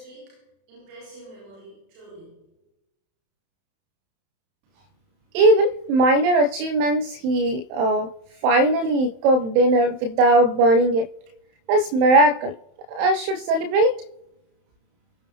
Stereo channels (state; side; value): late; left; 31 ms